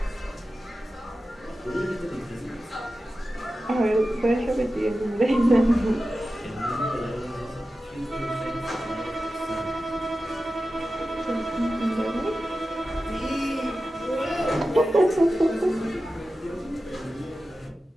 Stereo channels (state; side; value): normal; both; correlation 0.93